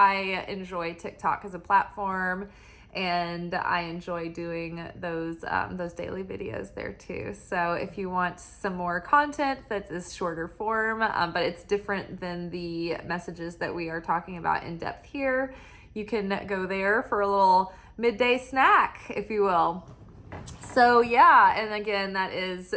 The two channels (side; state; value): both; identical; correlation 1.00